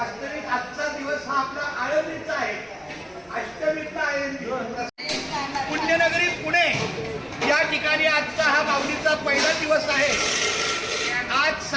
आजचा दिवस हा आपला आळंदीचा आहे, अष्टमीचा आळंदी. पुण्यनगरी पुणे या ठिकाणी आजचा हा माऊलीचा पहिला दिवस आहे. आज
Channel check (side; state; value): both; identical; correlation 1.00